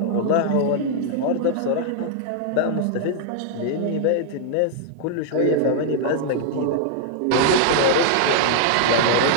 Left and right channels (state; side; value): different; both; correlation -0.01